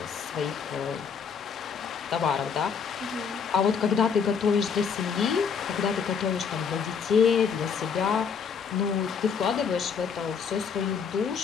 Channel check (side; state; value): right; quieter; 6.3 dB